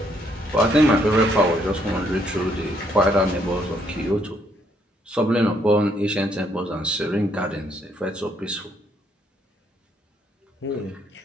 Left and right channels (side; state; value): both; normal; correlation 0.71